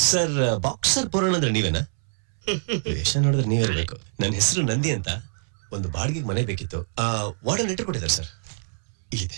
ಸರ್. ಬಾಕ್ಸರ್ ಪುರಾಣ ಅಂದ್ರೆ ನೀವೇನಾ? ವೇಷ ನೋಡಿದ್ರೆ ನೀವಿರ್ಬೇಕು. ನನ್ನ ಹೆಸರು ನಂದಿ ಅಂತ. ಒಂದು ಬಾಡಿಗೆ ಮನೆ ಬೇಕಿತ್ತು. ವಾರ್ಡನ್ ಲೆಟರ್ ಕೊಟ್ಟಿದ್ದಾರೆ ಸರ್,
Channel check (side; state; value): left; silent; 62 dB below the other